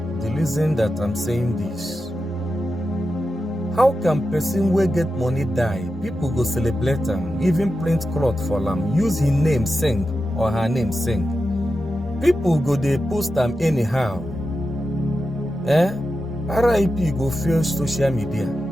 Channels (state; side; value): normal; both; correlation 0.90